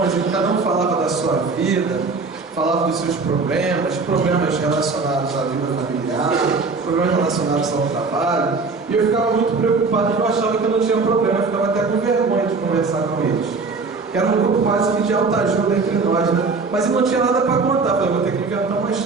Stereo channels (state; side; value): quieter; left; 4.3 dB